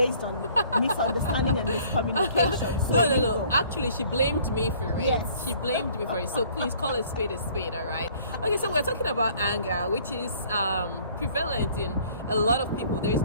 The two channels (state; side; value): inverted; both; correlation -0.56